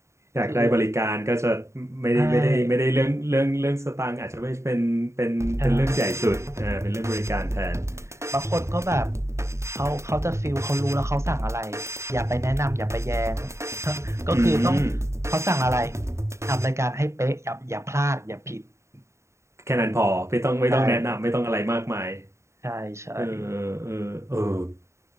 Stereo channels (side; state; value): left; late; 0.14 ms